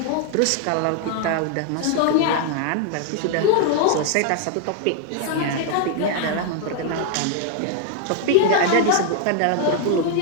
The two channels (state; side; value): different; both; correlation 0.00